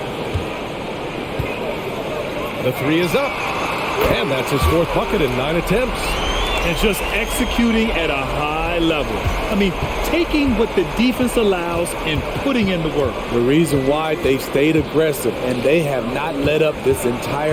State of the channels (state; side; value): identical; both; correlation 1.00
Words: The three is up. And that's his 4th bucket in 9 attempts. And just executing at a high level. I mean, taking what the defense allows and putting in the work. The reason why they've stayed aggressive and they have not let up this